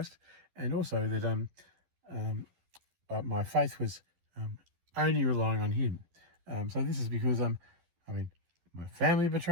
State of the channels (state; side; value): late; left; 11 ms